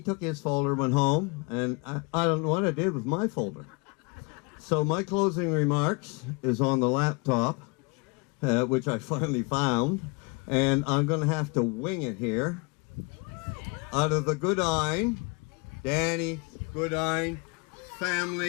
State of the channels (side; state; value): right; quieter; 30.4 dB